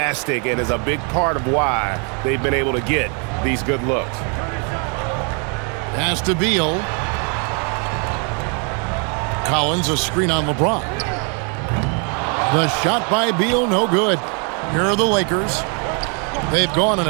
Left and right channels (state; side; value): quieter; left; 37.0 dB